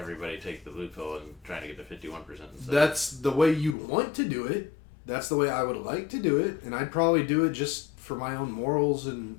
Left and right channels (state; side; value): drops out; right; at 3.8 s